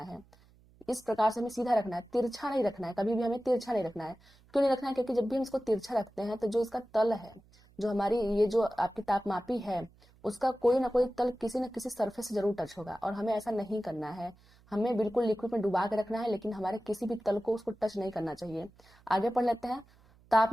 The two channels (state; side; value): noise; right; hum, 29 dB below the sound